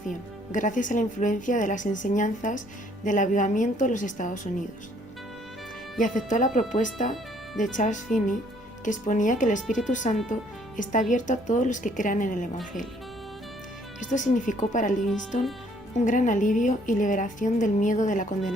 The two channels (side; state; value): both; normal; correlation 0.63